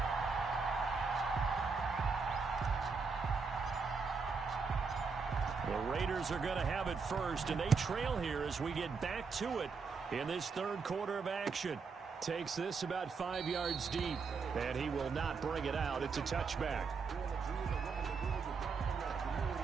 The Raiders are going to have it first, and they trail here as we get back to it in this 3rd quarter of action. Takes this about 5 yards deep, and he will not bring it out. It's a touchback.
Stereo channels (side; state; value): left; quieter; 5.0 dB